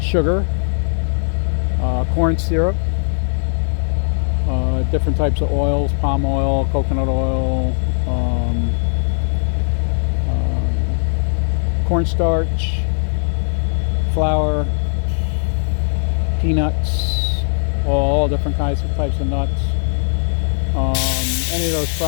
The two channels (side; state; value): right; silent; 56 dB below the other